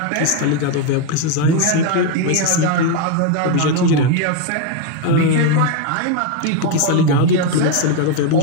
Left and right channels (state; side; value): different; both; correlation 0.01